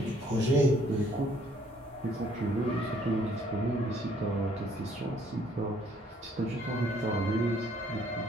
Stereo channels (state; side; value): normal; both; correlation 0.63